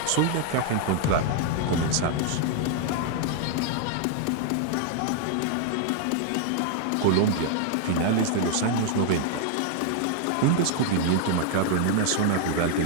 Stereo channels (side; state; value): both; different; correlation 0.00